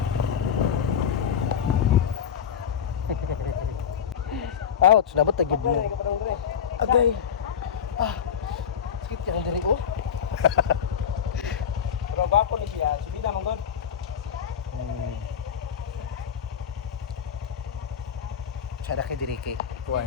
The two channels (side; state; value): right; quieter; 8.1 dB